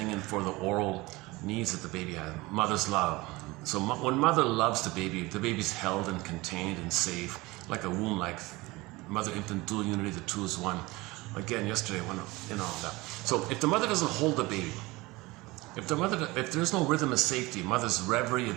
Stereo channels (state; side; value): quieter; left; 21.8 dB